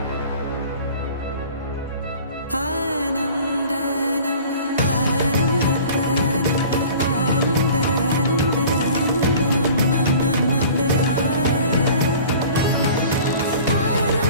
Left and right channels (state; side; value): inverted; both; correlation -0.44